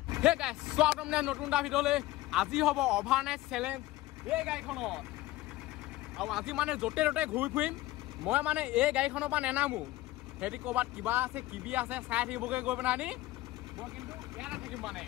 হে গাইছ স্বাগতম নতুন এটা ভিডিঅ'লৈ। আজি হ'ব অভাৰনাইট চেলেঞ্জ এই গাড়ীখনত আৰু আজি মানে য'তে ত'তে ঘূৰি ফুৰিম। মই মানে এই গাড়ীখনৰ পৰা নেনামো, সিহঁতি ক'ৰবাত কিবা আছে কিবি আছে চাই থাকিবগৈ গৈ পেলাই আনি মই কিন্তু ইয়াতে থাকিম। মানে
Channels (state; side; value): quieter; right; 17.3 dB